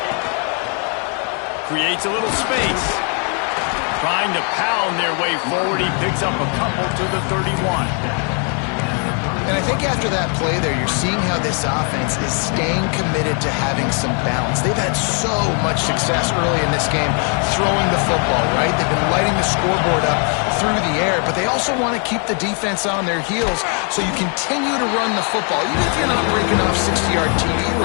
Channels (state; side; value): quieter; right; 40.0 dB